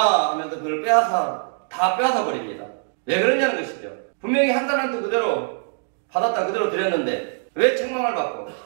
하면서 그걸 다 빼앗아 버립니다. 왜 그러냐는 것이죠. 분명히 한 달란트 그대로 받았다 그대로 드렸는데 왜 책망을 받고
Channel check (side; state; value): left; silent; 64 dB below the other